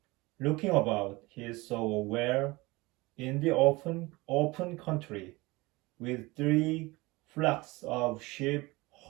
Looking about, he saw a well in the open country, with 3 flocks of sheep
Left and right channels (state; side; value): quieter; left; 22.4 dB